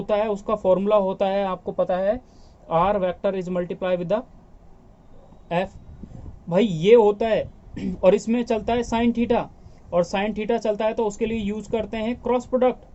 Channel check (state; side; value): identical; both; correlation 1.00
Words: है उसका फॉर्मूला होता है, आपको पता है, R vector is multiply with the F, भाई ये होता है। और इसमें चलता है साइन थीटा, और साइन थीटा चलता है तो उसके लिए यूज करते हैं क्रॉस प्रोडक्ट,